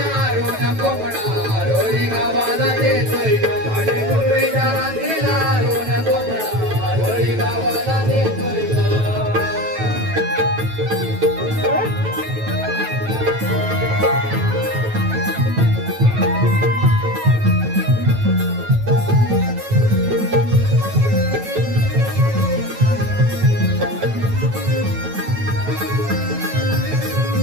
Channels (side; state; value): left; late; 9.1 ms